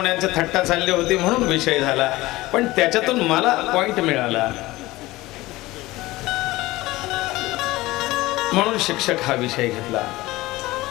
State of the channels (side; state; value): right; quieter; 18.9 dB